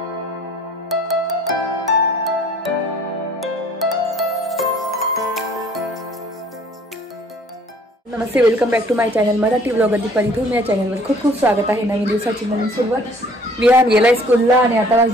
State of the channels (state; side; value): normal; both; correlation 0.55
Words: नमस्ते, welcome back to my channel Marathi blogger Deepali Dhoom. या चॅनलवर खूप खूप स्वागत आहे. नवीन दिवसाची नवीन सुरुवात. विहान गेलाय स्कूलला आणि आता